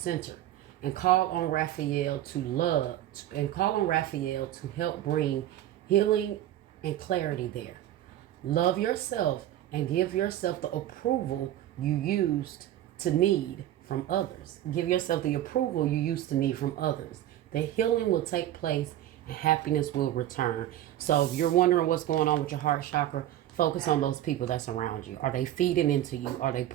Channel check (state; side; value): quieter; left; 12.9 dB